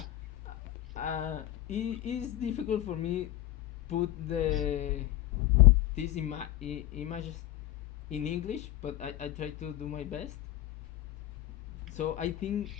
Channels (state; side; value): quieter; right; 14.6 dB